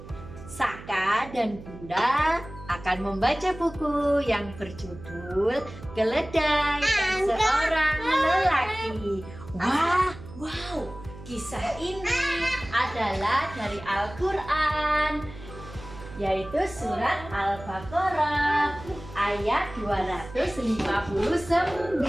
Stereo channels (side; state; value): right; noise; hum, 15 dB below the sound